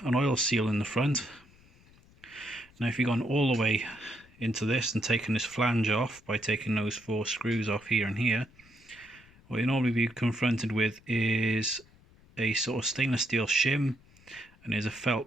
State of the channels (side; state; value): left; noise; rumble, 27 dB below the sound